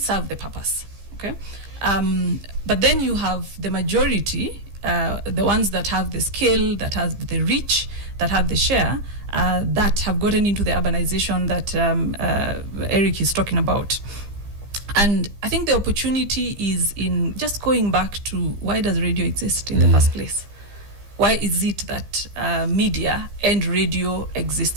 the purpose, okay? But then you have the majority, the ones that have the scale, that have the reach, that have the share, that have gotten into the urbanization that Eric is talking about. And I think the opportunity is in just going back to, why does radio exist in the first place? Why is it that media and radio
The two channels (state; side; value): late; left; 15 ms